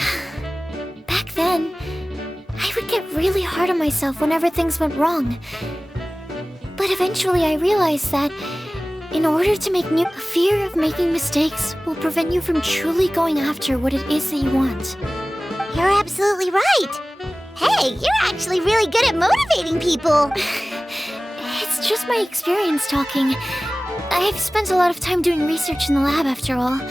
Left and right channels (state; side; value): normal; both; correlation 0.98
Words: Back then, I would get really hard on myself whenever things went wrong. But eventually I realized that in order to make fear of making mistakes will prevent you from truly going after what it is that you want. You're absolutely right. Hey, you're actually really good at motivating people. It's just my experience talking. I've spent a lot of time doing research in the lab after all.